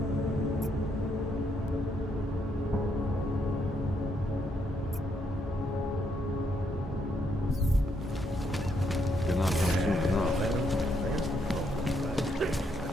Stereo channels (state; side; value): normal; both; correlation 0.75